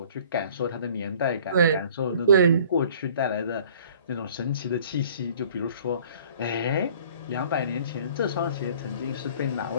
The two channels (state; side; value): inverted; both; correlation -0.52